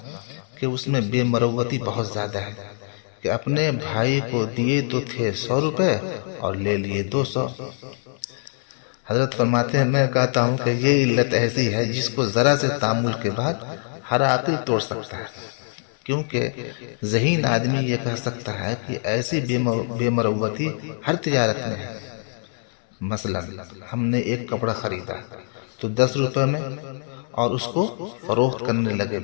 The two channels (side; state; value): right; silent; 55 dB below the other